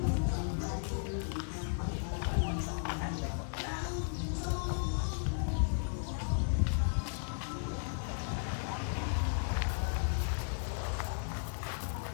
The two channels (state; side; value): silent; right; digital silence